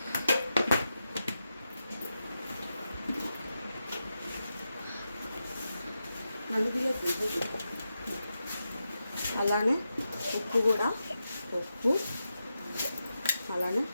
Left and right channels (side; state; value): both; inverted; correlation -0.89